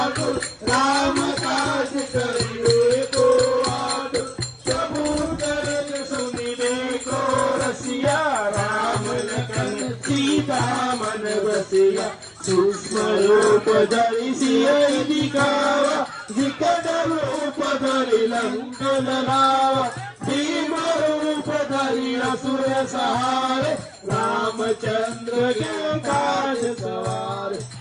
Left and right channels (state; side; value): identical; both; correlation 1.00